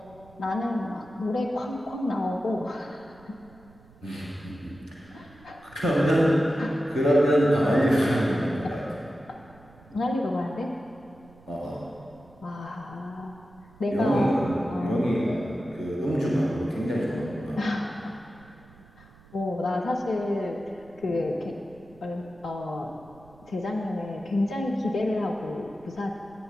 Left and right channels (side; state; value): right; noise; rumble, 25 dB below the sound